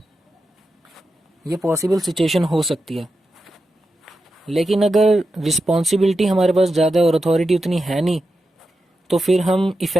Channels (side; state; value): both; normal; correlation 0.89